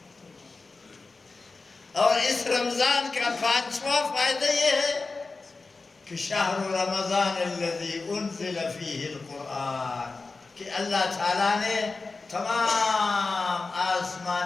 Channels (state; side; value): quieter; right; 3.9 dB